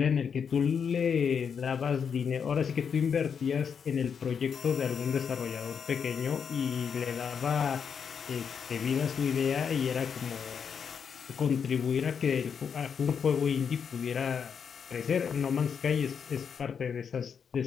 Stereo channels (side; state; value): right; quieter; 6.8 dB